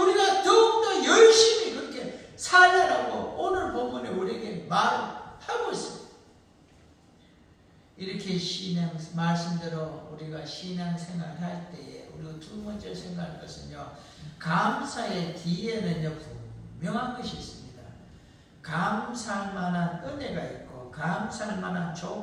더욱더 열심히 그렇게 살려라고 오늘 본문에 우리에게 말하고 있습니다. 이렇게 신앙 말씀대로 우리가 신앙생활 할 때에 우리가 두 번째 생각할 것은요, 감사의 뒤에는요 분명한 것이 있습니다. 감사할 만한 은혜가 있고 감사할 만한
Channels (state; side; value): identical; both; correlation 1.00